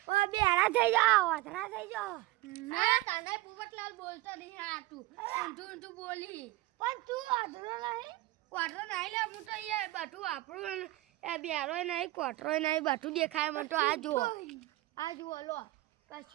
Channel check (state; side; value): quieter; left; 18.9 dB